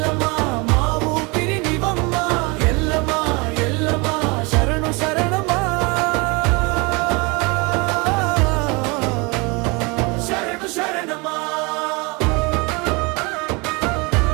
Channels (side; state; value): left; quieter; 28.1 dB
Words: మా ఊపిరి నివమ్మ, ఎల్లమ్మ ఎల్లమ్మ శరణు శరణమా, శరణు శరణమా.